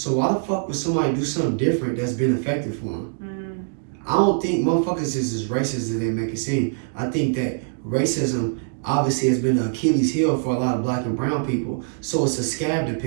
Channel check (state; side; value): silent; left; digital silence